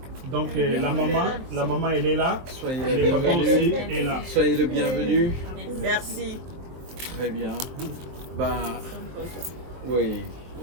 Donc la maman elle est là, Soyez le papa aussi est là. Soyez le bienvenu. Merci. Très bien. Bah, oui.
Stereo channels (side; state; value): left; late; 23 ms